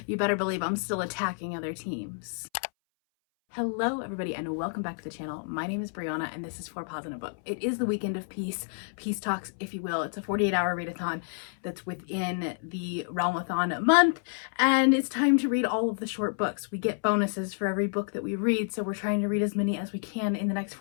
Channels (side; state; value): right; silent; 58 dB below the other